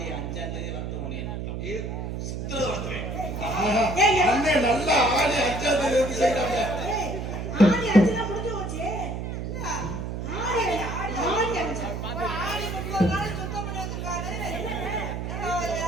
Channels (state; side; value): noise; right; hum, 5 dB below the sound